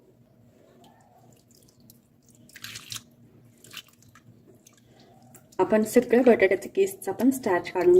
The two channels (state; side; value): identical; both; correlation 1.00